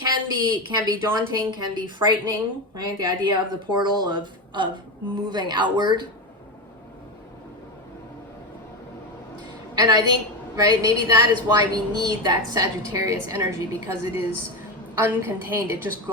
be daunting, can be frightening, right? The idea of the portal of moving outward. And I think, right, maybe that is why we need that Sagittarius energy, because it is uncontained, it just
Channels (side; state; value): both; normal; correlation 0.16